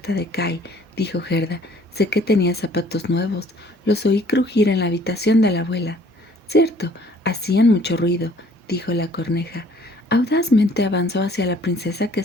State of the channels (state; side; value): normal; both; correlation 0.57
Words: de Kai», dijo Gerda. «Sé que tenía zapatos nuevos. Los oí crujir en la habitación de la abuela». «Cierto, hacían mucho ruido», dijo la corneja. Audazmente avanzó hacia la princesa, que